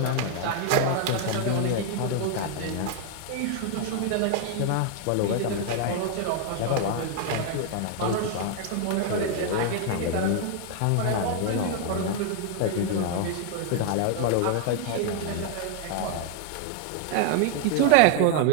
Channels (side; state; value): both; different; correlation 0.00